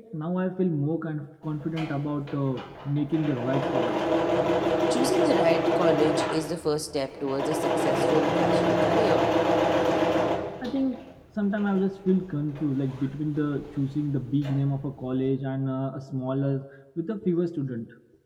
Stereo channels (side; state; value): both; identical; correlation 1.00